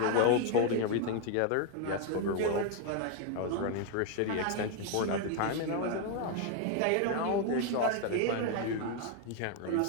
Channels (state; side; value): different; both; correlation 0.01